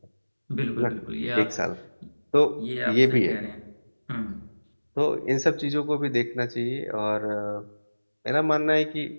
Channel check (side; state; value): both; inverted; correlation -1.00